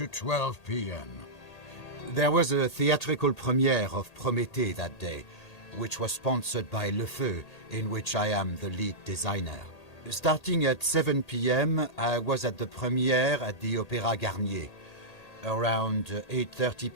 12 p.m.? There was a theatrical premiere of Prométhée that day, which was sponsored by Le Feu, in which I am the lead designer. Starting at 7 p.m., I was at the premiere at the Opéra Garnier. Around 8:30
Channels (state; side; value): late; right; 1.8 ms